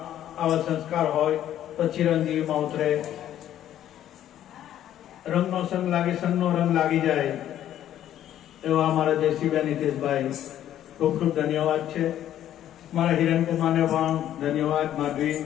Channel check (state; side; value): quieter; right; 11.5 dB